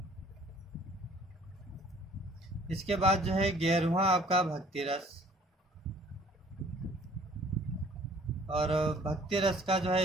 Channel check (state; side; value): normal; both; correlation 0.55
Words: इसके बाद जो है 11वां आपका भक्ति रस, और भक्ति रस का जो